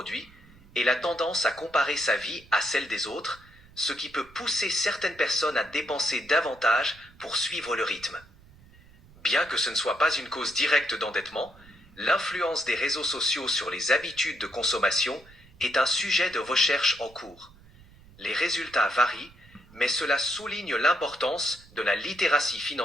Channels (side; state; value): right; noise; rumble, 24 dB below the sound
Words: et la tendance à comparer sa vie à celle des autres, ce qui peut pousser certaines personnes à dépenser davantage pour suivre le rythme. Bien que ce ne soit pas une cause directe d'endettement, l'influence des réseaux sociaux sur les habitudes de consommation est un sujet de recherche en cours. Les résultats varient, mais cela souligne l'importance de la littératie